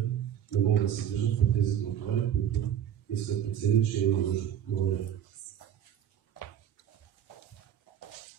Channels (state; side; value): quieter; left; 9.8 dB